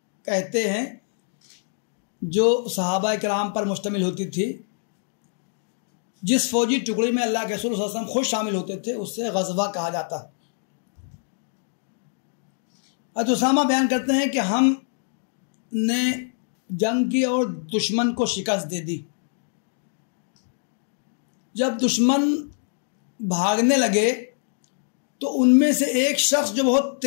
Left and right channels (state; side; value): silent; right; digital silence